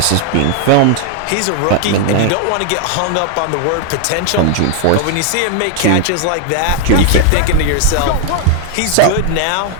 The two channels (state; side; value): different; both; correlation 0.00